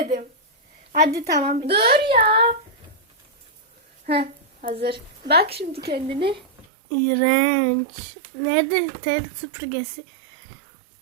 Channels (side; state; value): left; drops out; at 6.7 s